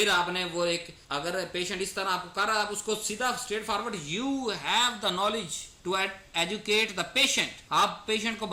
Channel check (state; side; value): identical; both; correlation 1.00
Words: आपने वो एक, अगर पेशेंट इस तरह आपको कर रहा है, आप उसको सीधा straight forward, you have the knowledge to educate the patient. आप पेशेंट को